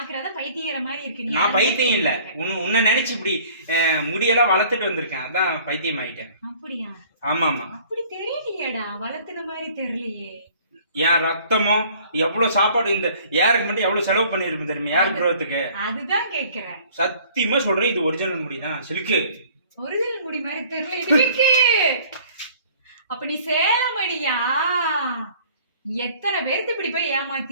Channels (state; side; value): inverted; both; correlation -0.53